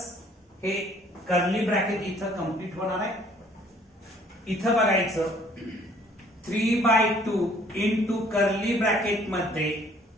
हे कर्ली ब्रॅकेट इथं कंप्लीट होणार आहे इथं बघायचं 3/2 into कर्ली ब्रॅकेट मध्ये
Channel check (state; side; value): normal; both; correlation 0.59